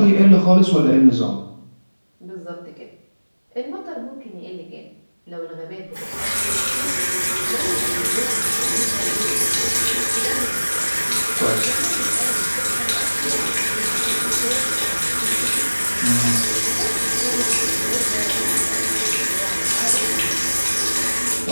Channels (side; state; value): both; inverted; correlation -1.00